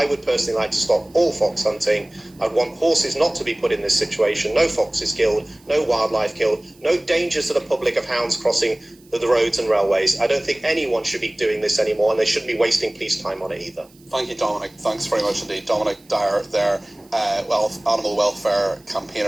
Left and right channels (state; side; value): noise; right; hiss, 30 dB below the sound